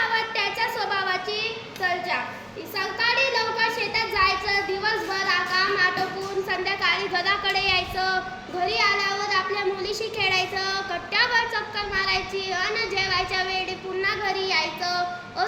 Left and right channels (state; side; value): identical; both; correlation 1.00